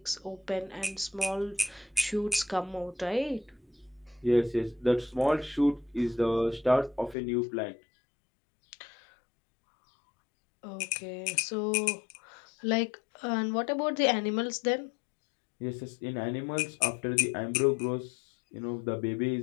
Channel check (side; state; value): right; drops out; at 7.2 s